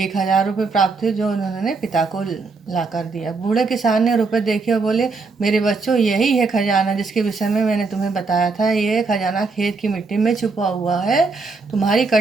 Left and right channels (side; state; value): left; quieter; 4.2 dB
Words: रुपये प्राप्त हुए जो उन्होंने पिता को ला कर दिया। बूढ़े किसान ने रुपए देखे और बोले, मेरे बच्चों, यही है खजाना जिसके विषय में मैंने तुम्हें बताया था। ये खजाना खेत की मिट्टी में छुपा हुआ है, तुम्हारी